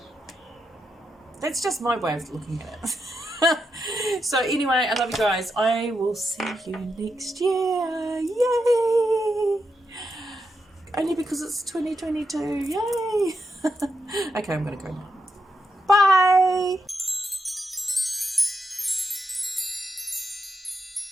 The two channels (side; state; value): both; normal; correlation 0.84